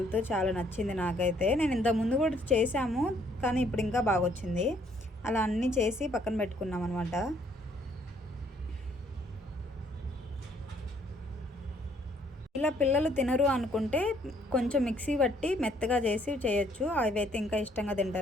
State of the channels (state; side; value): normal; both; correlation 0.65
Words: చాలా నచ్చింది నాకైతే. నేను ఇంత ముందు కూడా చేసాము కానీ ఇప్పుడు ఇంకా బాగా వచ్చింది. అలా అన్నీ చేసి పక్కన పెట్టుకున్నాం అనమాట. ఇలా పిల్లలు తినరు అనుకుంటే కొంచెం మిక్సీ పట్టి మెత్తగా చేసి చేయొచ్చు, అవి అయితే ఇంకా ఇష్టంగా